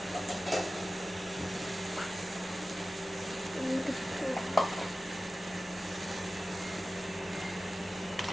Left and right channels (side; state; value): both; normal; correlation 0.95